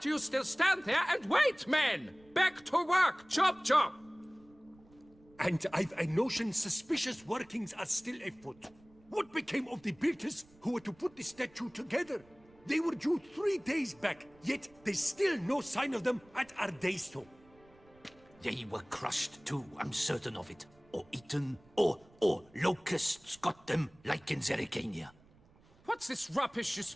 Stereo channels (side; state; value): right; noise; rumble, 28 dB below the sound